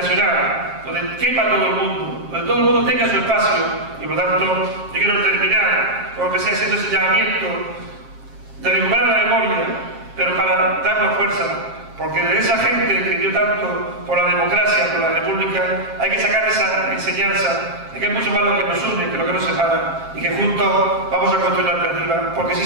donde quepa todo el mundo, donde todo el mundo tenga su espacio. Y por lo tanto, yo quiero terminar, como empecé haciendo ese llamamiento, de recuperar la memoria, pero para darnos fuerza, porque de esa gente que dio tanto por la democracia, por la república, hay que sacar esa enseñanza de que es mucho más lo que nos une que lo que nos separa y que juntos vamos a construir la alternativa, porque sí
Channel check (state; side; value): late; left; 7.5 ms